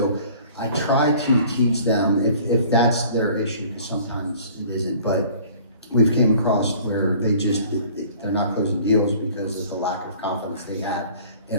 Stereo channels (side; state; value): both; inverted; correlation -0.51